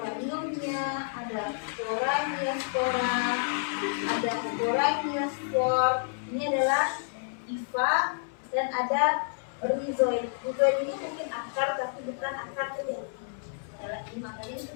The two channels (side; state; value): right; silent; digital silence